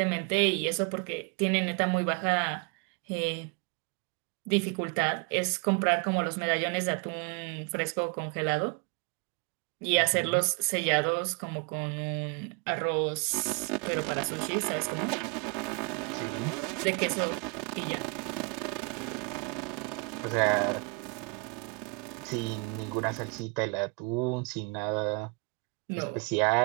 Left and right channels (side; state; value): left; quieter; 32.5 dB